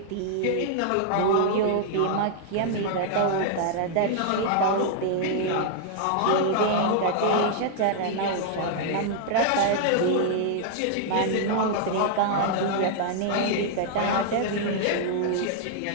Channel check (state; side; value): different; both; correlation -0.01